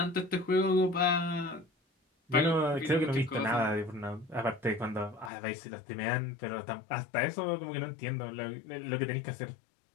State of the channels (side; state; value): right; drops out; at 5.3 s